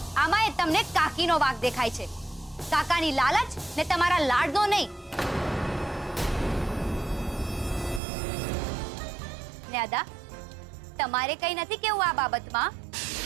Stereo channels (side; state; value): left; drops out; at 8.0 s